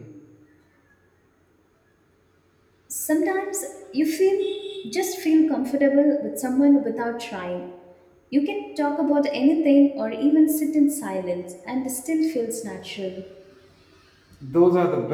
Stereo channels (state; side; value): identical; both; correlation 1.00